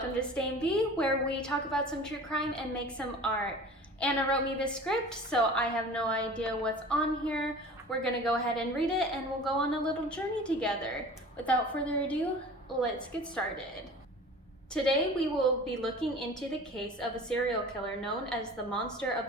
to Stain B, where we talk about some true crime and make some art. Anna wrote me the script, so I have no idea what's on here. We're gonna go ahead and read it and we'll go on a little journey together. Without further ado, let's get started. Today we will be looking into the case of a serial killer known as the Monster of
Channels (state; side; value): normal; both; correlation 0.41